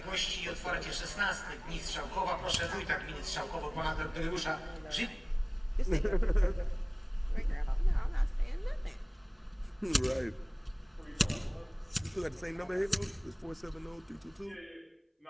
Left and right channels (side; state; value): both; identical; correlation 1.00